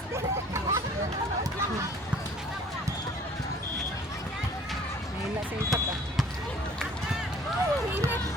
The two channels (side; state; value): both; normal; correlation 0.52